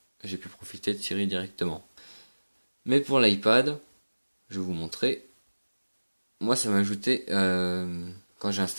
j'ai pu profiter de Siri directement. Mais pour l'iPad, je vais vous montrer. Moi ça m'a ajouté, quand j'ai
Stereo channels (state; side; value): inverted; both; correlation -1.00